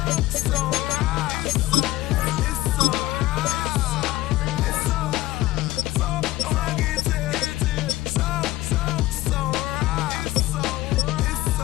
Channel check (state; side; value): quieter; right; 17.0 dB